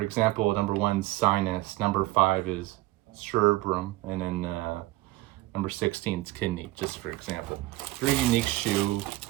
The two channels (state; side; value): quieter; left; 18.8 dB